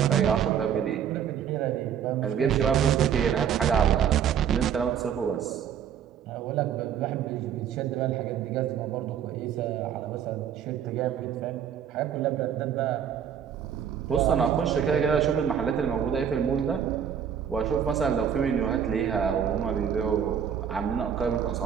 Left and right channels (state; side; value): quieter; left; 8.5 dB